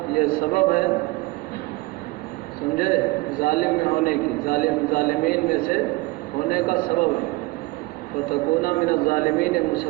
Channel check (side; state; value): left; quieter; 22.7 dB